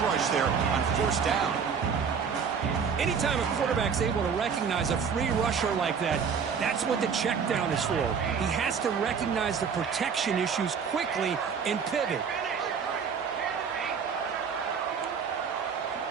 rush there on first down. Anytime a quarterback's able to recognize a free rusher like that, that's what the check down is for. He has to recognize the protection issues quickly and pivot.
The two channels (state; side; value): quieter; left; 6.4 dB